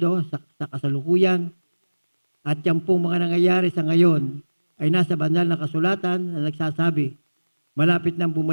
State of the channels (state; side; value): inverted; both; correlation -1.00